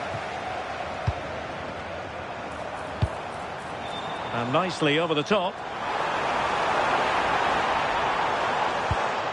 And nicely over the top.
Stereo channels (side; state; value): both; identical; correlation 1.00